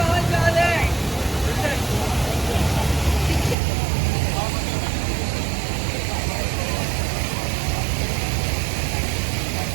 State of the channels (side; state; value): left; drops out; at 3.6 s